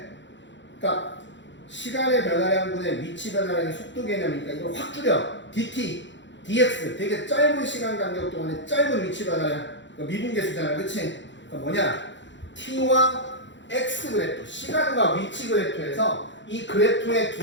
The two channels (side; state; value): right; late; 0.53 ms